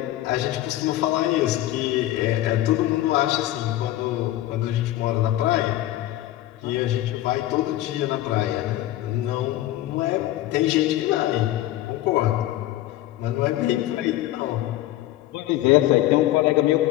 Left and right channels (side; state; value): right; quieter; 15.0 dB